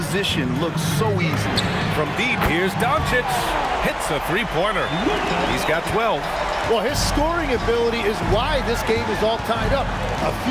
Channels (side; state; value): both; identical; correlation 1.00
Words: look so easy. From deep, here's Doncic. Hits a three-pointer. He's got 12. Well, his scoring ability is why this game is all tied up. A